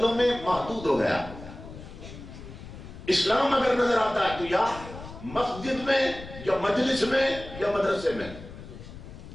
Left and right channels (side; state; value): left; noise; rumble, 14 dB below the sound